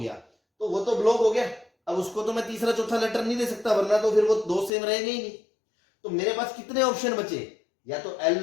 तो वो तो ब्लॉक हो गया, अब उसको तो मैं तीसरा चौथा लेटर नहीं दे सकता, वरना तो फिर वो दो सेम रहेंगे ही नहीं। तो मेरे पास कितने ऑप्शन बचे? या तो एल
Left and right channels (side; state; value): right; drops out; at 4.7 s